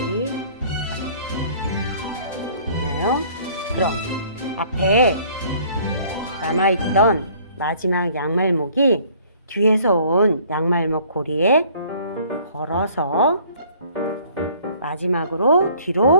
아래. 됐나요? 그럼 앞에 남아있던 마지막 양말목이 뒤에서 온 양말목 고리에 걸어서 마지막으로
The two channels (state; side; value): inverted; both; correlation -0.56